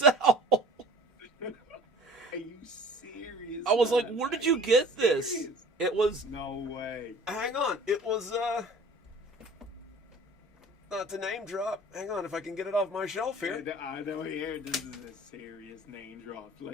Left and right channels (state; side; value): normal; both; correlation 0.46